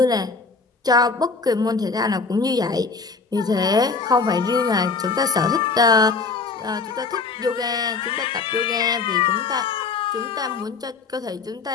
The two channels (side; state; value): right; quieter; 4.5 dB